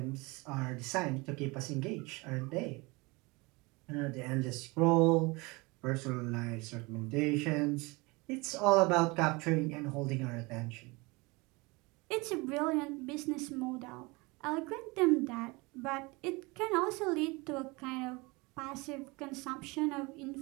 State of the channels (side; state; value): left; quieter; 25.4 dB